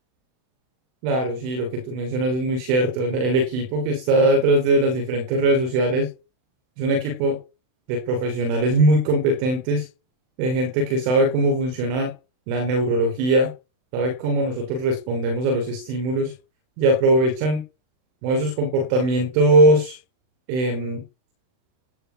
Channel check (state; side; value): late; left; 39 ms